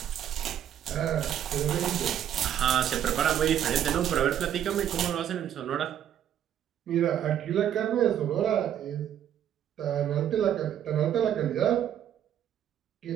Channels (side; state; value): left; quieter; 10.2 dB